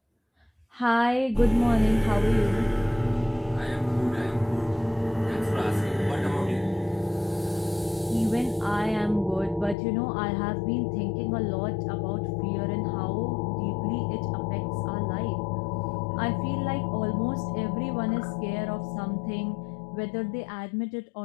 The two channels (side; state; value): right; drops out; at 9.8 s